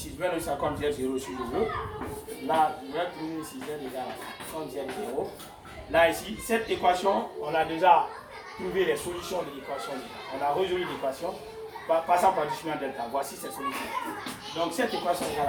je vais le faire comme Z0 si je veux. Là, je vais trouver ici Z égale à comme Z0. Là ici, cette équation, on a déjà trouvé les solutions de l'équation. On a résolu l'équation passant par discriminant delta. Voici cette solution. Donc cette équation égale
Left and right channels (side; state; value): both; identical; correlation 1.00